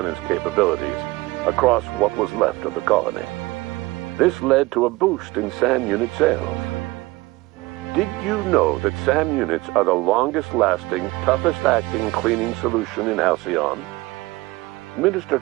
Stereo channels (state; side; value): quieter; left; 21.1 dB